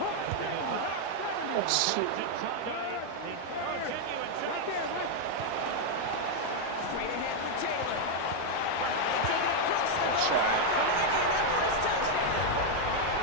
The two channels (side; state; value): both; different; correlation 0.00